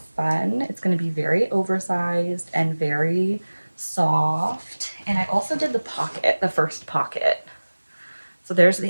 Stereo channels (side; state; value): both; inverted; correlation -1.00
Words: fun? It's going to be very oversized and very soft. And I also did the pocket, the first pocket. So there's